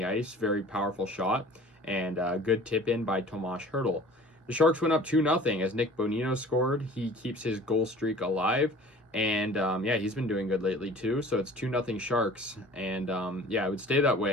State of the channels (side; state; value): both; normal; correlation 0.46